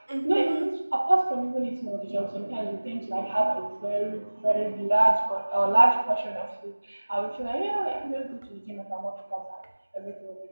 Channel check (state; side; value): inverted; both; correlation -1.00